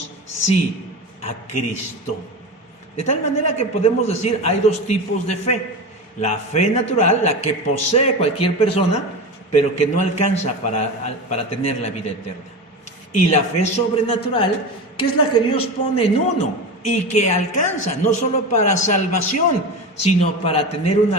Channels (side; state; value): both; normal; correlation 0.25